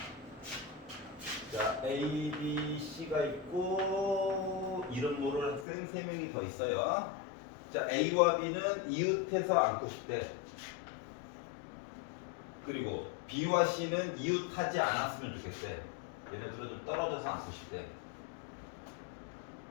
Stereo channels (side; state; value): right; drops out; at 5.7 s